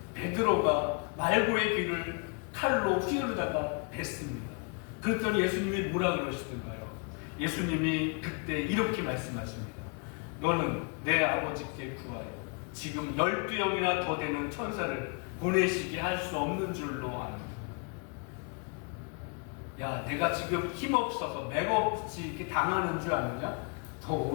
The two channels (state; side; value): quieter; right; 36.2 dB